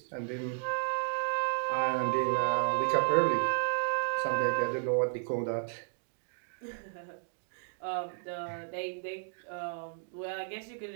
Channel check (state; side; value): silent; left; 56 dB below the other